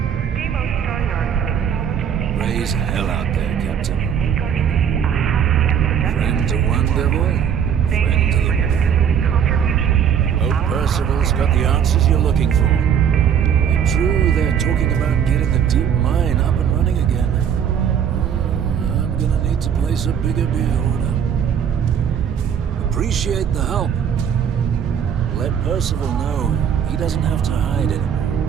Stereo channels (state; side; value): quieter; left; 8.2 dB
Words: Raise hell out there, Captain. Friend to one devil, friend to the more. Hope Percival's got the answers you're looking for. And true, they're talking about getting the deep mine up and running again. I'm gonna need to place a bigger beer order. Appreciate the help. Let Percival know he doesn't have to hide